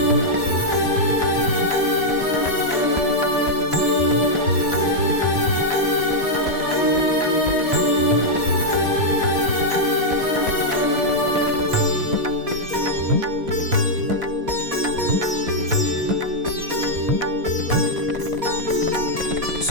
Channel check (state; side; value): late; left; 4.2 ms